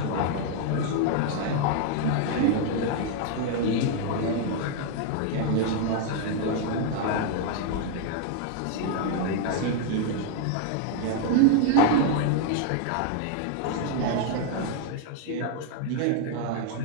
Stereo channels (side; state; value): both; different; correlation 0.00